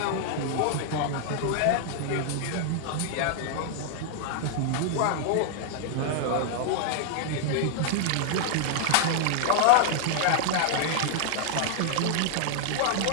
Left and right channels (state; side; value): different; both; correlation 0.00